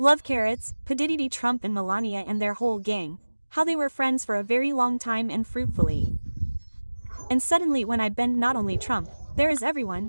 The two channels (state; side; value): inverted; both; correlation -1.00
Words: carrots, P. Trump and Melania and their whole gang, how they were friends for a very long time and fruitfully. And suddenly when I bend not only Trump, there is